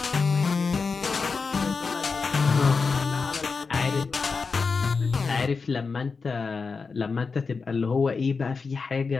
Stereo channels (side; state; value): right; quieter; 4.7 dB